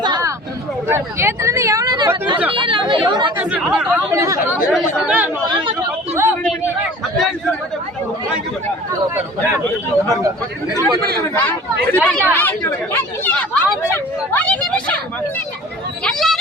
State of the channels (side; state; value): both; normal; correlation 0.44